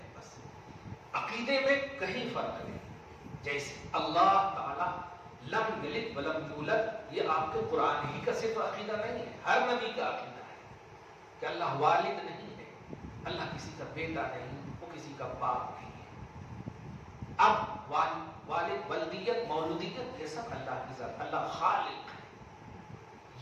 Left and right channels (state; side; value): identical; both; correlation 1.00